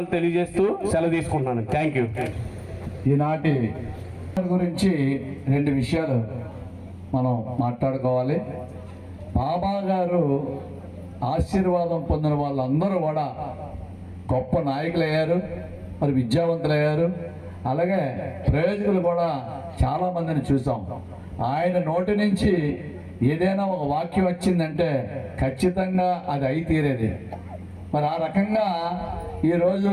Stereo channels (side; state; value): both; identical; correlation 1.00